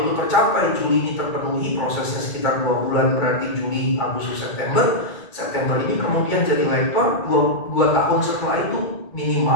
tercapai, Juli ini terpenuhi, prosesnya sekitar 2 bulan, berarti Juli, Agustus, September. September ini kemudian jadi lektor, 2 tahun setelah itu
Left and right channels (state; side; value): late; right; 2.3 ms